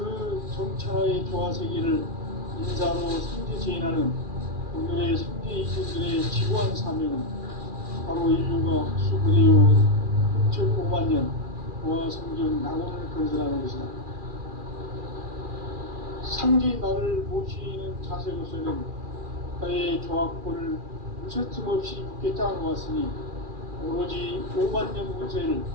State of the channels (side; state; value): left; late; 2.4 ms